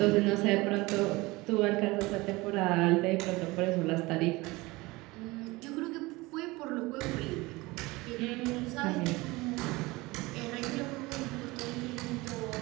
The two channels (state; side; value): quieter; left; 22.1 dB